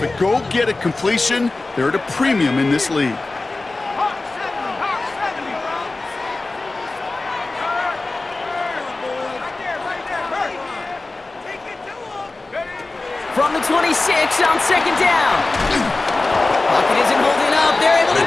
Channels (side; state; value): right; quieter; 3.3 dB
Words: Go get a completion. They're at a premium in this league. From the 26 on second down. Pocket isn't holding up. They're able to